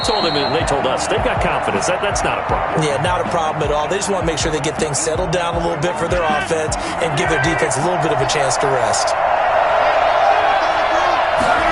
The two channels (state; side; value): identical; both; correlation 1.00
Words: told him, and they told us, they've got confidence. That's not a problem. Yeah, not a problem at all. They just want to make sure they get things settled down a little bit for their offense and give their defense a little bit of a chance to rest.